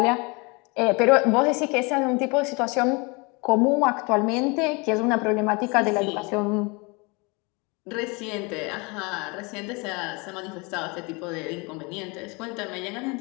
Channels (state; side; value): quieter; right; 28.8 dB